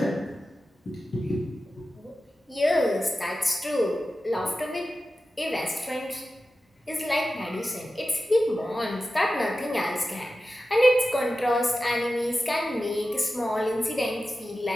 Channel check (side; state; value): both; normal; correlation 0.93